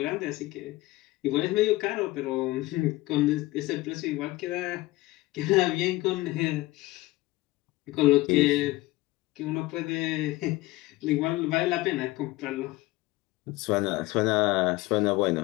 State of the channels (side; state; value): right; quieter; 19.6 dB